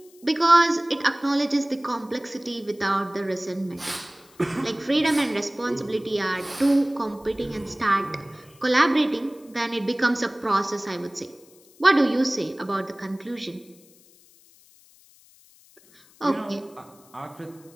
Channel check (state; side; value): noise; left; hiss, 27 dB below the sound